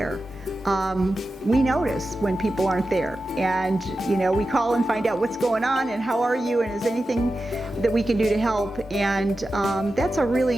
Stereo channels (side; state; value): both; normal; correlation 0.92